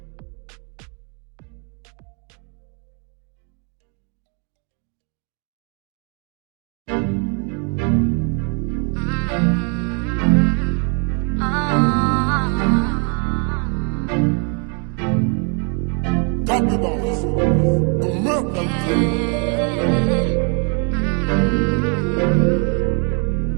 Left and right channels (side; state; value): left; quieter; 37.5 dB